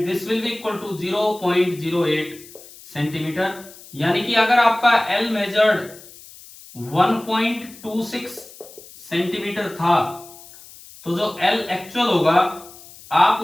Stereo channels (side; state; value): left; noise; hiss, 20 dB below the sound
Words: this will be equal to 0.08 centimetre. यानी कि अगर आपका L मेजर्ड 1.26 सेंटीमीटर था, तो जो L एक्चुअल होगा आप